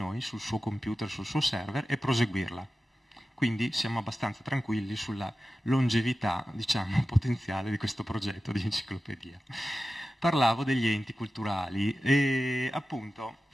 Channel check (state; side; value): normal; both; correlation 0.94